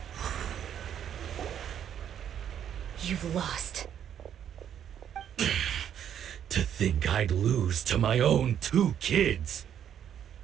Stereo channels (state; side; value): quieter; left; 9.4 dB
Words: You've lost. To think I'd lose to my own 2 kids.